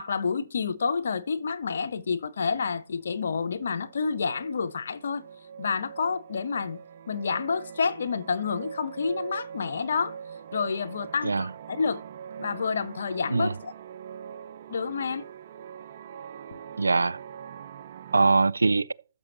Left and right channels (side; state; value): both; inverted; correlation -0.85